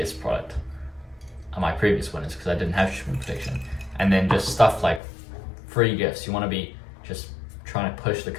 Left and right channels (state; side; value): drops out; right; at 5.0 s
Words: product, on my previous winners, because I didn't have shipping protection. And then just stuff like free gifts. You want to be just trying to push the